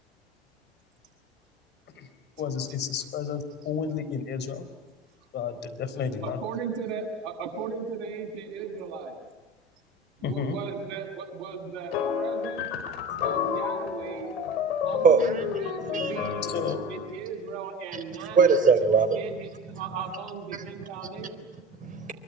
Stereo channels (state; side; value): normal; both; correlation 0.33